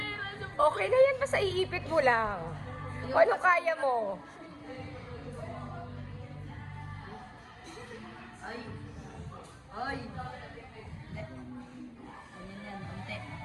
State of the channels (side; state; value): both; identical; correlation 1.00